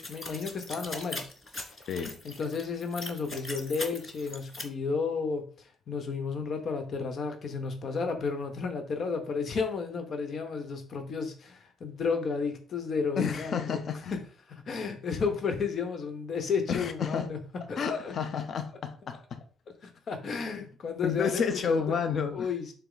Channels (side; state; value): right; quieter; 5.1 dB